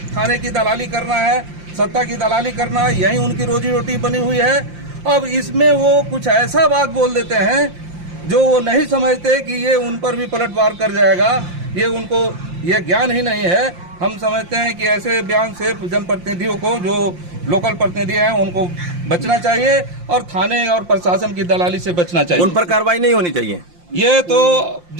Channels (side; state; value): left; late; 5.7 ms